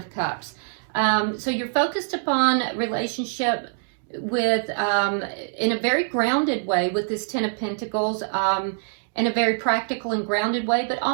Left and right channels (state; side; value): silent; left; digital silence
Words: Cups. So you're focused upon relationship with in a very grounded way with this Ten of Pentacles, in a very practical and grounded way, but